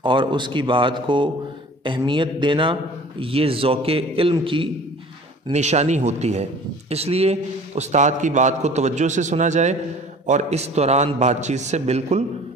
اور اس کی بات کو اہمیت دینا، یہ ذوق علم کی نشانی ہوتی ہے۔ اس لیے استاد کی بات کو توجہ سے سنا جائے اور اس دوران بات چیت سے بالکل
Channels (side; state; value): both; normal; correlation 0.46